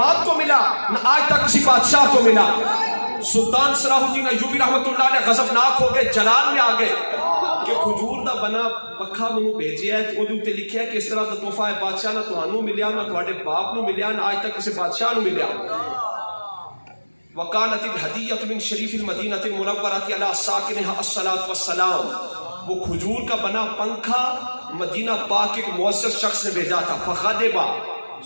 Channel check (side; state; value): both; inverted; correlation -1.00